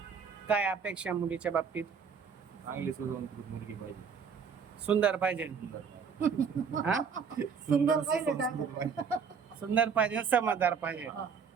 काय अपेक्षा मुलीच्या बाबतीत? चांगली सुसंस्कृत मुलगी पाहिजे. सुंदर पाहिजे. हा? सुंदर पाहिजे. सुंदर पाहिजे, समजदार पाहिजे. हा.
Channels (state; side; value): quieter; left; 6.2 dB